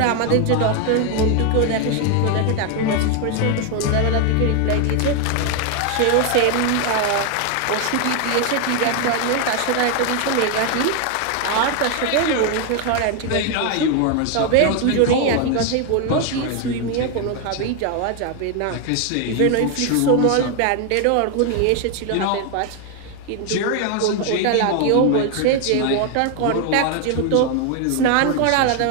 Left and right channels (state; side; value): different; both; correlation 0.01